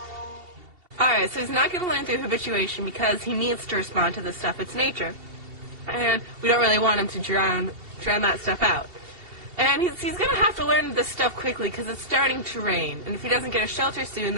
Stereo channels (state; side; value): late; left; 2.7 ms